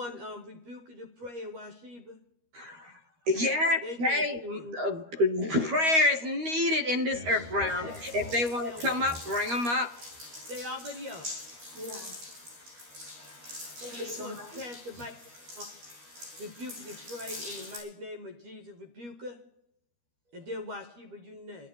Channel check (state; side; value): late; left; 13 ms